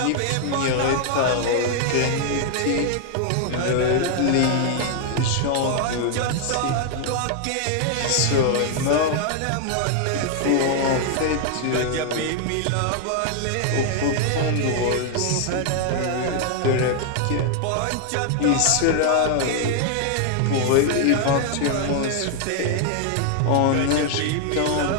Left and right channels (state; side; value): different; both; correlation 0.00